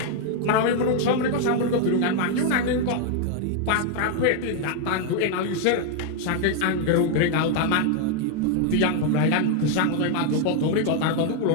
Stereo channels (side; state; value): both; different; correlation 0.00